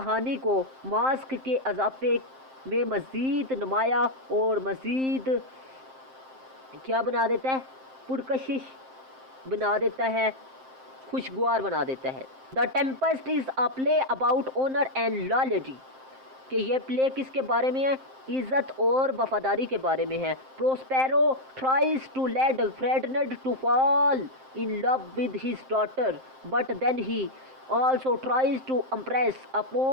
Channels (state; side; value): late; left; 7.6 ms